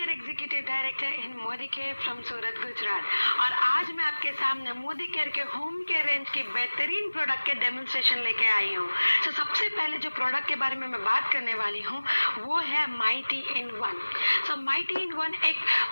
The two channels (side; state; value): both; inverted; correlation -1.00